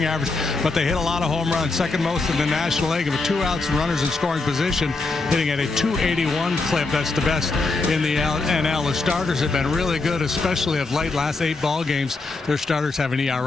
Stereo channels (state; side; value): quieter; right; 3.6 dB